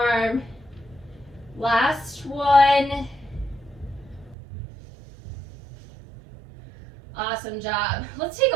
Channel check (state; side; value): drops out; left; at 4.4 s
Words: Last one. Awesome job. Let's take